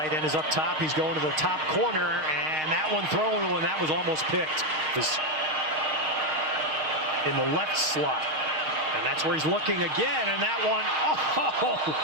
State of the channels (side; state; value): left; late; 6.4 ms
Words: end, is up top. He's going to the top corner, and that one thrown when that was almost picked. Is in the left slot. And that's where he's looking again, and that one,